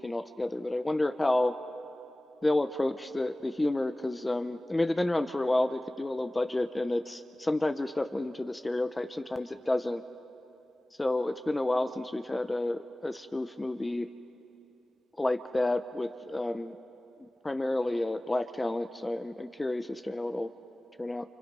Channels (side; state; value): both; normal; correlation 0.98